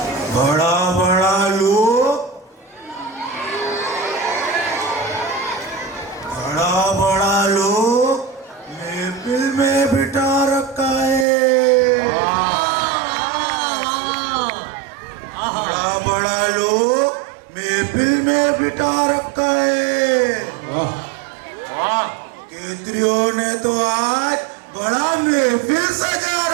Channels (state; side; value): drops out; left; at 11.2 s